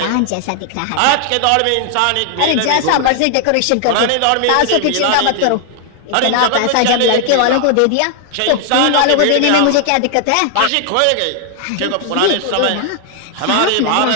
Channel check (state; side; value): different; both; correlation 0.00